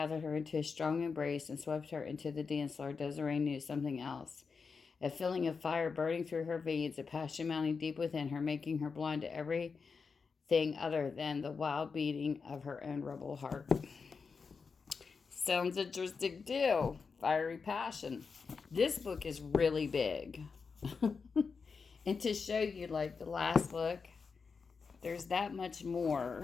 her into his strong embrace and swept her into the dance floor, Desiree knew something else. A feeling of fire burning through her veins, a passion mounting deep within her, making her blind to everything other than the wild beating of her own rebel heart. Sounds interesting too. Fiery passion. This book is really big. And to show you, like the last book, there's that much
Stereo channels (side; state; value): right; quieter; 5.2 dB